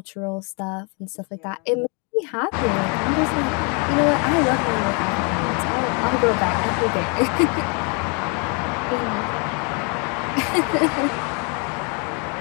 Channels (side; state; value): right; quieter; 35.1 dB